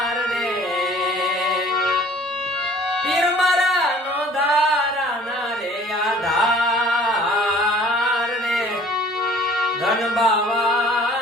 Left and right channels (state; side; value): normal; both; correlation 0.51